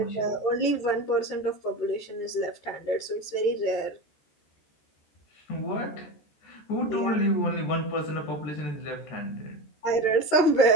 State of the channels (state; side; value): late; right; 14 ms